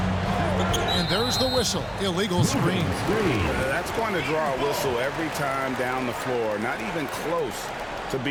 And there's the whistle. Illegal screen. That's going to draw a whistle every time down the floor. Not even close to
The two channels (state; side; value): identical; both; correlation 1.00